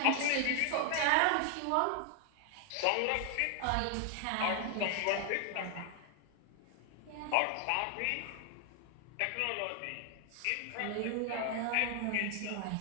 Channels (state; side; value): different; both; correlation 0.00